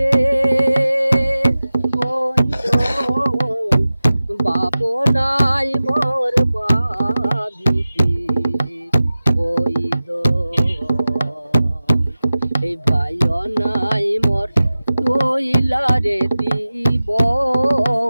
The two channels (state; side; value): inverted; both; correlation -0.96